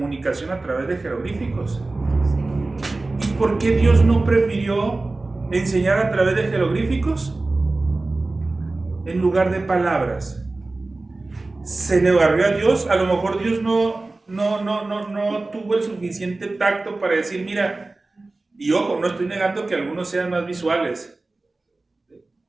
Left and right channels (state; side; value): quieter; left; 3.2 dB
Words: a través de jeroglíficos? ¿Y por qué Dios no prefirió enseñar a través de jeroglíficos en lugar de palabras? ¿Se le barrió a Dios? A lo mejor Dios no tuvo el suficiente tacto para decir, mira, y ojo, no estoy negando que algunos sean más visuales,